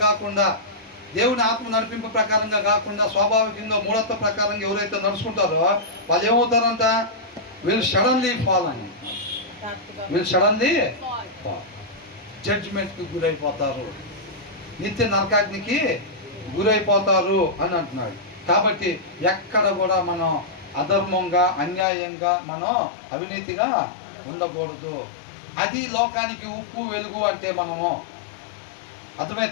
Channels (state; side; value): drops out; right; at 21.9 s